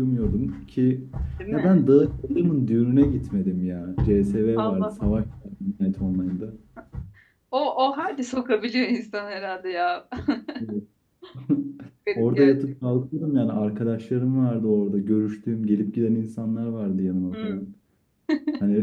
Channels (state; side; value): identical; both; correlation 1.00